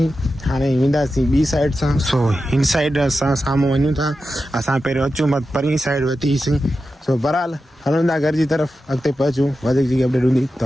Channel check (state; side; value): normal; both; correlation 0.91